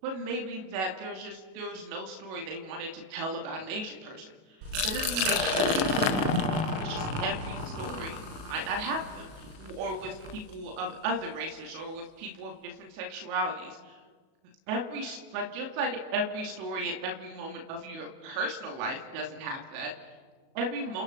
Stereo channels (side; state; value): left; late; 37 ms